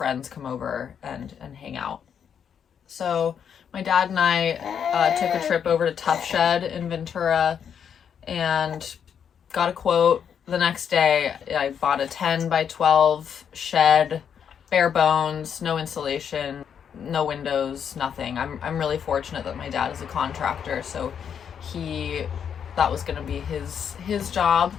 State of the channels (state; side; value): quieter; right; 7.9 dB